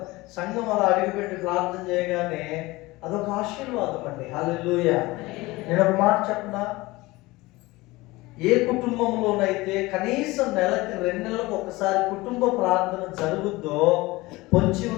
సంఘం అలా అడిగిపెట్టి ప్రార్థన చేయగానే అదొక ఆశీర్వాదం అండి. హల్లెలూయా. నేను ఒక మాట చెప్పనా, ఏ కుటుంబంలోనైతే కనీసం నెలకి 2 నెలలకు ఒకసారి కుటుంబ ప్రార్థన జరుగుద్దో పొంచి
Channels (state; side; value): quieter; right; 20.9 dB